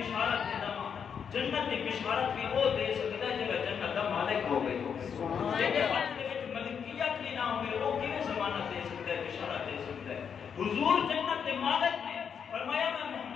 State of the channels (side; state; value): right; quieter; 7.2 dB